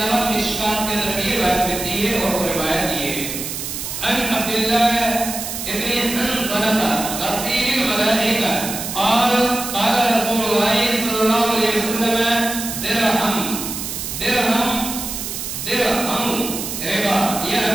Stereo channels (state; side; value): noise; right; hiss, 6 dB below the sound